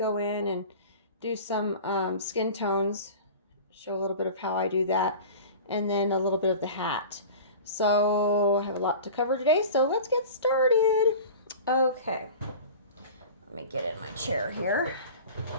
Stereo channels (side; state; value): both; inverted; correlation -0.37